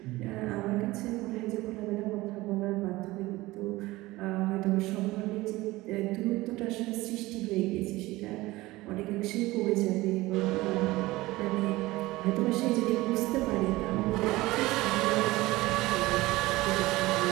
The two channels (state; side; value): quieter; left; 19.3 dB